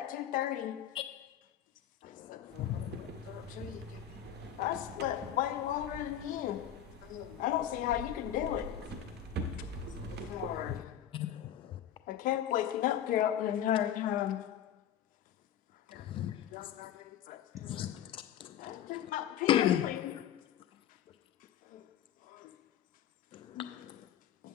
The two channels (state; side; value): quieter; right; 10.2 dB